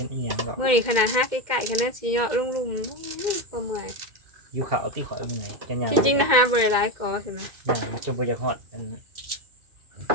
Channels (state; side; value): late; left; 2.1 ms